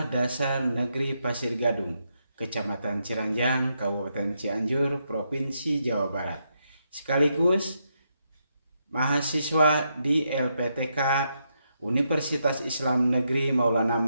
Dasar Negeri Pasir Gadung, Kecamatan Ciranjang, Kabupaten Cianjur, Provinsi Jawa Barat. Sekaligus mahasiswa di LPTK Universitas Islam Negeri Maulana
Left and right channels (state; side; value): inverted; both; correlation -0.80